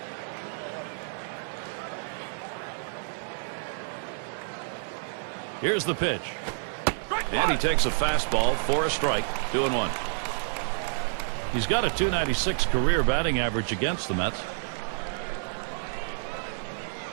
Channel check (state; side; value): silent; left; digital silence